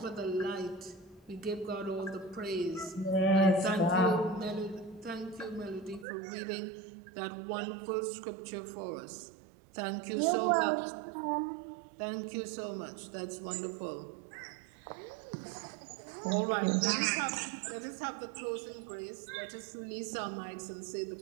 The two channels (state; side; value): drops out; left; at 6.1 s